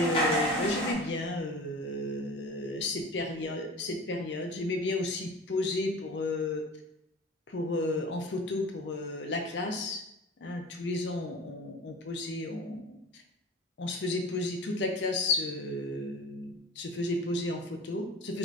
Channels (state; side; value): normal; both; correlation 0.37